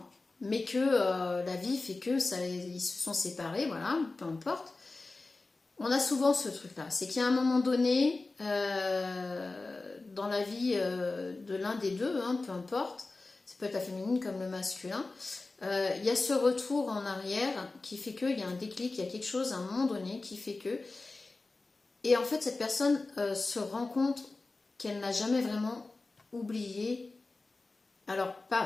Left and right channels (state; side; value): quieter; right; 3.4 dB